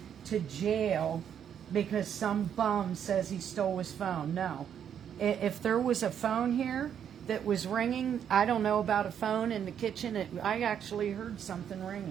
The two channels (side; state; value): left; quieter; 8.7 dB